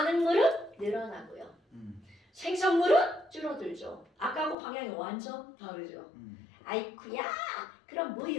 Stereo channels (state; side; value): drops out; right; at 4.5 s